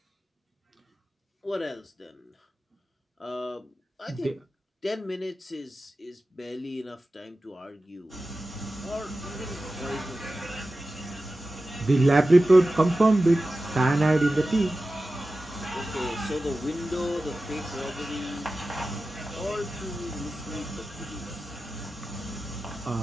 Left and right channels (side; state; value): both; normal; correlation 0.94